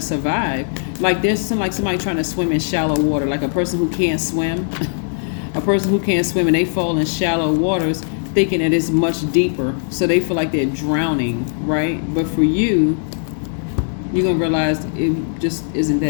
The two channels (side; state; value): right; silent; digital silence